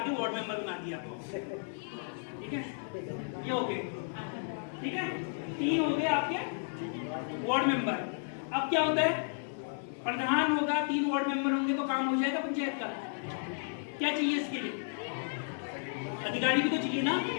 वार्ड मेंबर बना दिया। ठीक है, ये हो गए। ठीक है, 3 हो गए आपके वार्ड मेंबर। अब क्या होता है? प्रधान होगा, 3 वार्ड मेंबर होंगे तो काम हो जाएगा पंचायत का। क्या चाहिए इसके लिए? अधिकारी भी तो चाहिए ना,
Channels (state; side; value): silent; right; 56 dB below the other